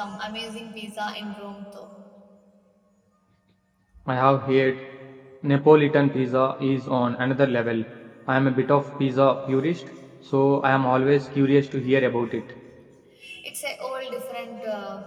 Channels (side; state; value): both; identical; correlation 1.00